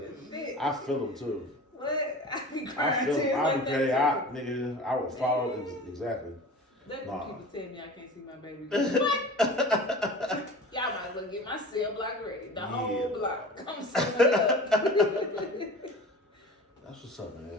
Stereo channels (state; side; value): normal; both; correlation 0.38